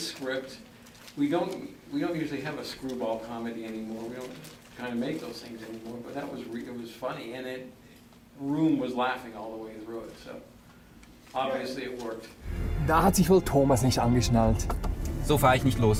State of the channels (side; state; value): both; identical; correlation 1.00